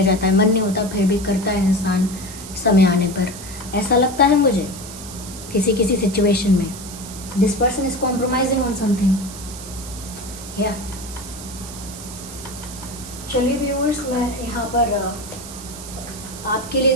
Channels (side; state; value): right; noise; hiss, 13 dB below the sound